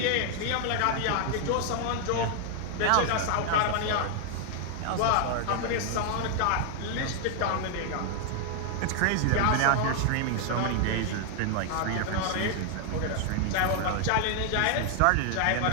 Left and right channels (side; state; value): both; different; correlation 0.00